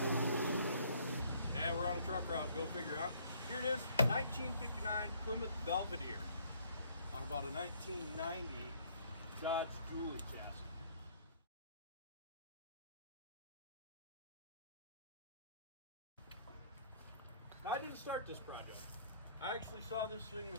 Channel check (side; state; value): both; inverted; correlation -0.60